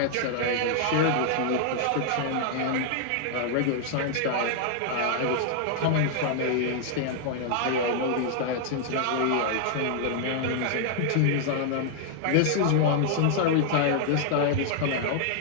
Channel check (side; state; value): both; different; correlation 0.00